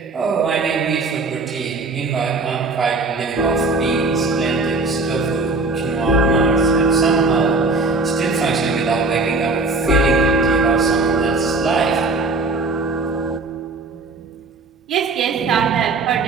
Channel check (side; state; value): left; quieter; 3.5 dB